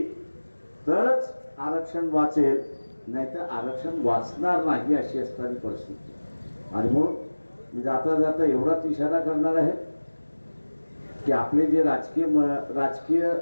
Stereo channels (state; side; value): inverted; both; correlation -1.00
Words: तरच आरक्षण वाचेल, नाहीतर आरक्षण वाचणार नाही अशी असणारी परिस्थिती. आणि म्हणून मी जाता जाता एवढाच इशारा करणार आहे की आपले जे राजकीय